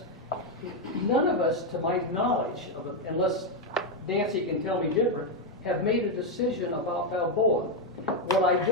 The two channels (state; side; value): normal; both; correlation 0.03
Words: None of us, to my knowledge, unless Nancy can tell me different, have made a decision about Balboa. What I